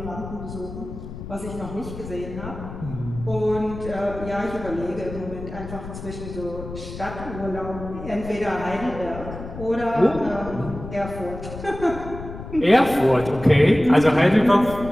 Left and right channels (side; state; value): left; noise; rumble, 11 dB below the sound